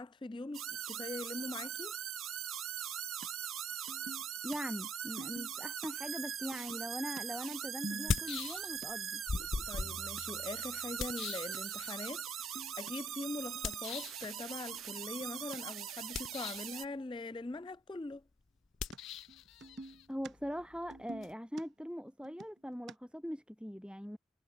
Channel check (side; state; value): both; normal; correlation 0.70